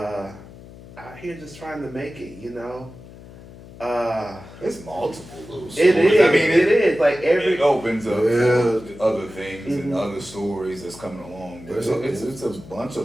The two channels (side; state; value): left; noise; hum, 18 dB below the sound